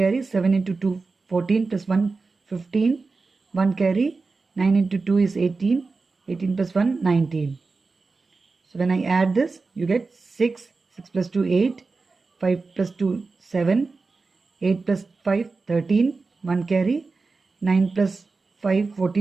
7 into 2, 14 plus 1, 15. 1 carry. 9 into 2 is 18. 18 plus 1, 19. So when I add this, you get 6. 6 plus 2, 8. 5 plus 2, 7. 8 plus 5, 13. 1 carry. 9 plus 5,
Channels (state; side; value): quieter; left; 4.1 dB